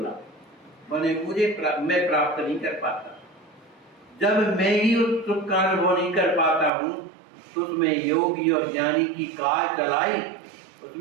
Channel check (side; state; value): left; drops out; at 6.7 s